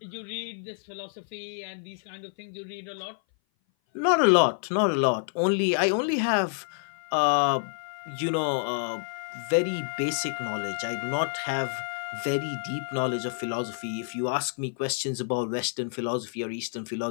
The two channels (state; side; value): silent; right; 57 dB below the other